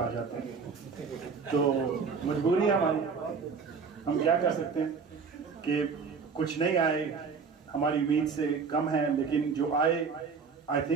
जाते हैं। तो मजबूरी है हमारी, हम क्या कर सकते हैं कि कुछ नहीं आए, हमारी उम्मीद से कम है, लेकिन जो I I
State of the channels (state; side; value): quieter; left; 5.4 dB